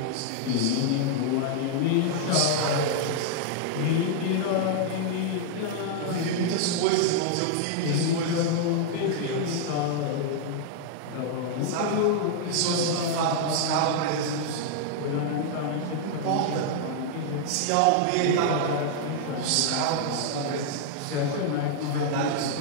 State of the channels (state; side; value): different; both; correlation -0.01